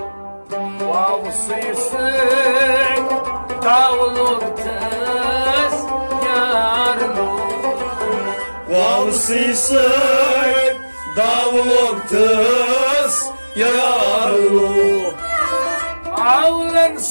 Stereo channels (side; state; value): both; inverted; correlation -1.00